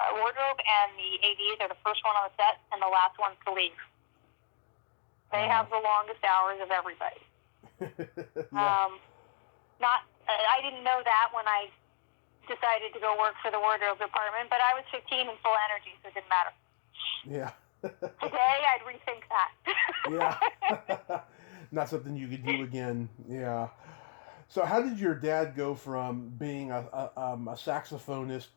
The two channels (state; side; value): silent; right; 56 dB below the other